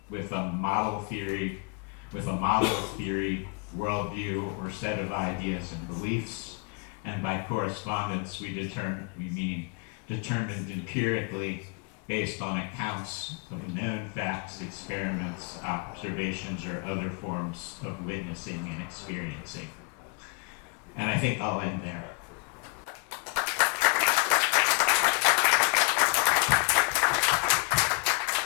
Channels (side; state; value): right; quieter; 30.6 dB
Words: with a model theory, worldview, or set of ideas and beliefs. And by correspondence, we mean determined empirically based on accounts of known facts, experiments, observations, or other forms of witnessing and experiencing. And I think I'll end there.